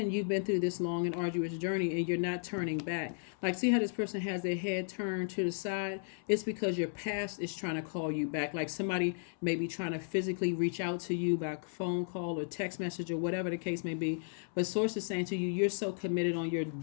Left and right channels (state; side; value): silent; right; 55 dB below the other